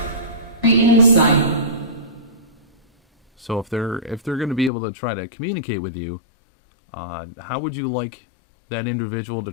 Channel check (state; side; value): drops out; right; at 4.7 s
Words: Insight. So if they're going to be able to try to communicate with you, how would you like that individual to